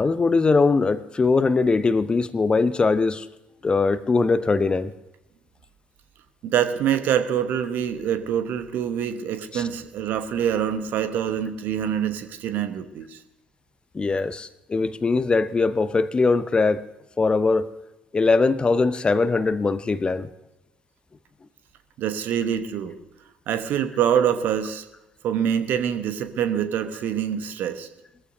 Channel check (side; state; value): both; normal; correlation 0.73